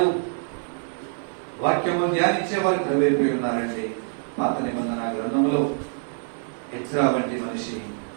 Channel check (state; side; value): silent; left; digital silence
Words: వాక్యము ధ్యానించే వారు ప్రవేశపోయి ఉన్నారండి. పాత నిబంధన గ్రంథంలో ఎజ్రా వంటి మనిషి